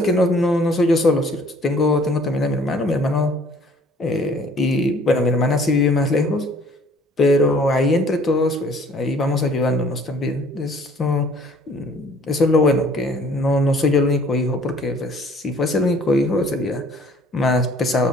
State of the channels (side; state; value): both; normal; correlation 0.56